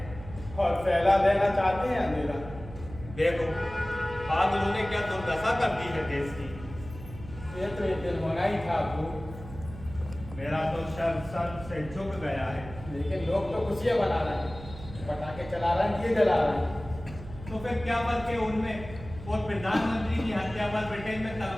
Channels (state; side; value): noise; right; hum, 14 dB below the sound